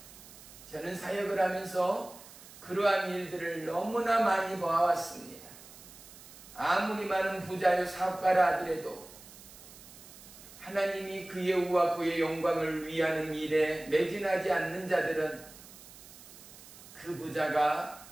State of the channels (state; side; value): noise; right; hiss, 19 dB below the sound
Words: 저는 사역을 하면서 그러한 일들을 너무나 많이 봐왔습니다. 아무리 많은 부자요 사업가라 하더라도 하나님이 그의 의와 그의 영광을 위하는 일에 매진하지 않는 자들은 그 부자가